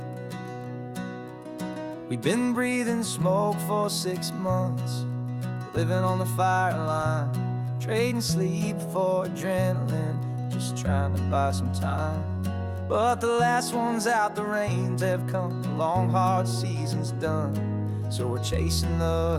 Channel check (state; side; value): identical; both; correlation 1.00